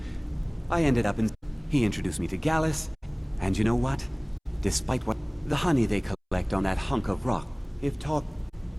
I ended up in... He introduced me to Gallus. And you know what? Despite what... The honey they collect on that hunk of rock. If talk...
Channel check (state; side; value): identical; both; correlation 1.00